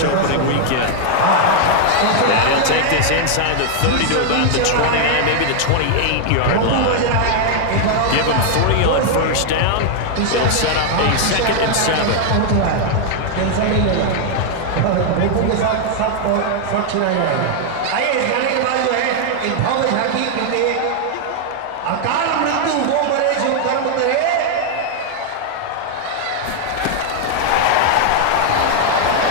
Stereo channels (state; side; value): different; both; correlation 0.00